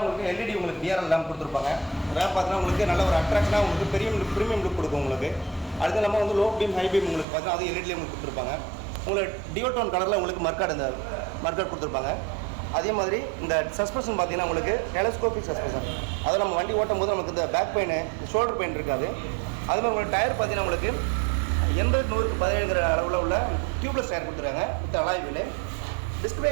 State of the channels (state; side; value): drops out; left; at 7.2 s